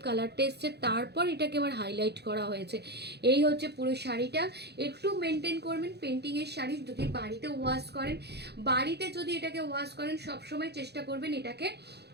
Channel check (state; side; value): late; left; 0.48 ms